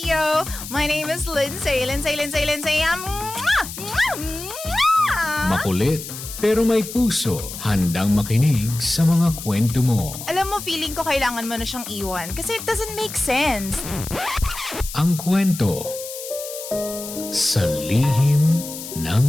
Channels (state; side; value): noise; left; hiss, 10 dB below the sound